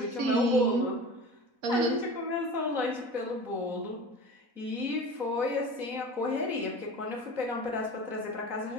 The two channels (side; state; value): left; late; 4.0 ms